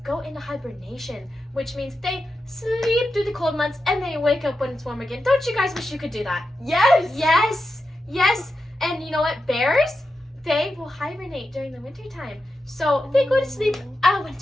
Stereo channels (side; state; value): both; normal; correlation 0.89